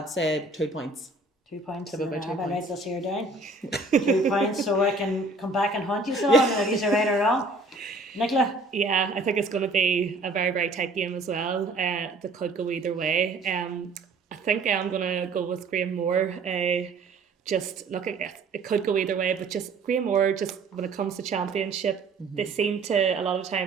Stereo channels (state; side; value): quieter; left; 3.3 dB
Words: say 2 points. 2 points. About 2 I'll points. write this here down. 2 points, so I can come back and hunt you all, and if you're right or wrong. Nicola? Yeah, I think it's going to be a very, very tight game as well. That could go either way. I think I'm going to go with Graham Moore. Just looking at it could go either way, but just Graham Moore, just when it comes to championship, they seem to a lot of